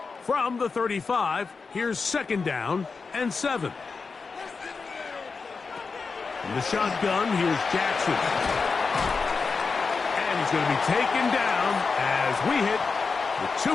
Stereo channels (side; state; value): right; quieter; 4.7 dB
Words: From the 35, here's 2nd down and 7. From the shotgun, here's Jackson. And he's going to be taken down as we hit the